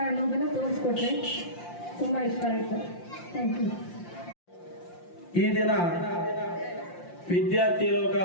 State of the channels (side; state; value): right; late; 5.7 ms